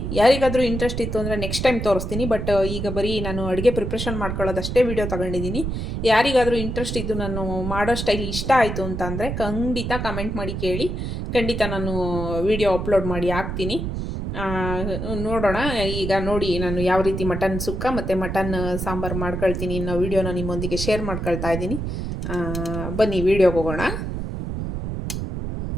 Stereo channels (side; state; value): right; noise; rumble, 4 dB below the sound